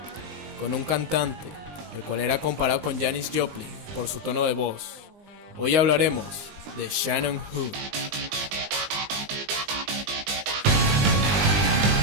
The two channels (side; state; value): left; late; 20 ms